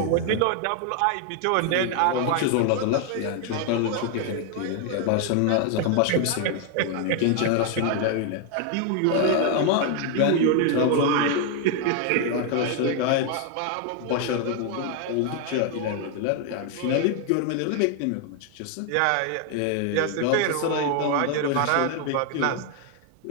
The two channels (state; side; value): different; both; correlation 0.00